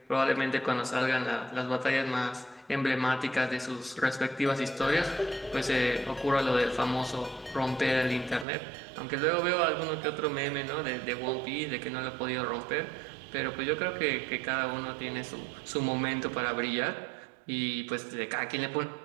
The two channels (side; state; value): left; drops out; at 8.5 s